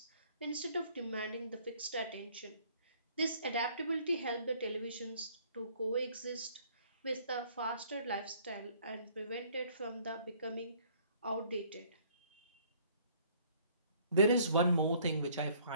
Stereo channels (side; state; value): both; inverted; correlation -0.59